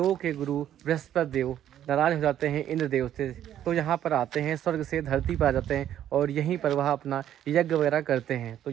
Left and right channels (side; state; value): left; quieter; 11.1 dB